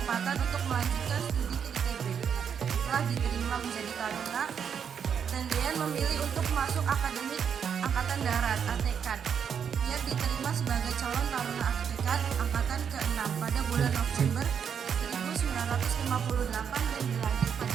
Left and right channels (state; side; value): quieter; left; 7.5 dB